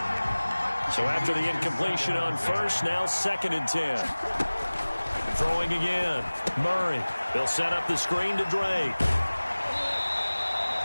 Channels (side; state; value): both; inverted; correlation -1.00